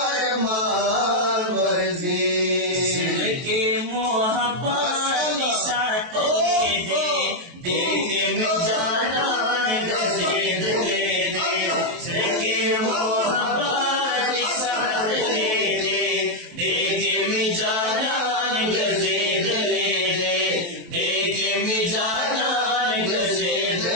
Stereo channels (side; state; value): left; late; 23 ms